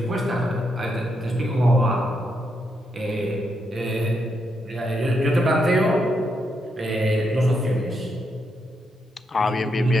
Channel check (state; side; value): normal; both; correlation 0.81